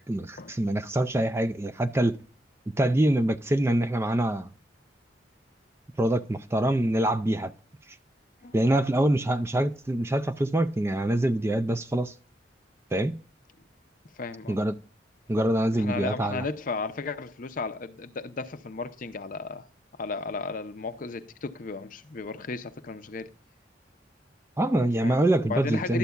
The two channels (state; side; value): normal; both; correlation 0.80